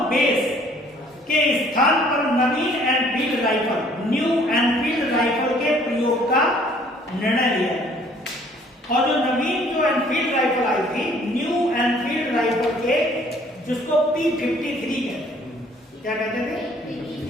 बेस के स्थान पर नवीन Enfield rifle, new Enfield rifle के प्रयोग का निर्णय लिया। और जो नवीन जो एनफील्ड राइफल आई थी, न्यू एनफील्ड राइफल के, जिसको P53 कहते हैं, क्या कहते थे?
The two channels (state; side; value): normal; both; correlation 0.58